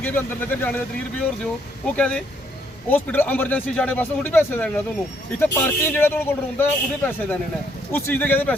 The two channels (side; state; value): both; normal; correlation 0.70